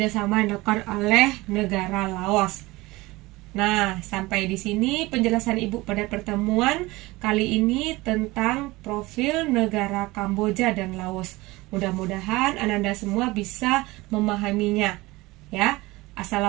yang dilakukan oleh negara Laos. Nah, sampai di sini penjelasan Ibu pada pertemuan kali ini tentang profil negara Kamboja dan Laos. Mudah-mudahan Ananda semua bisa memahaminya. Ya,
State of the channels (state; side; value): quieter; left; 21.0 dB